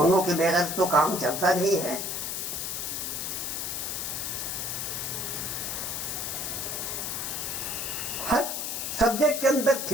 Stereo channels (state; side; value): noise; left; hiss, 3 dB below the sound